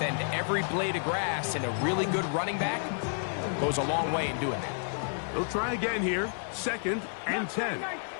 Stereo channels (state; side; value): silent; right; 58 dB below the other